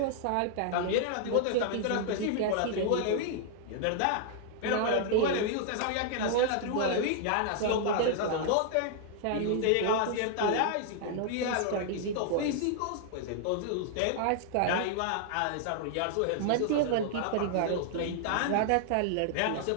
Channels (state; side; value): different; both; correlation -0.01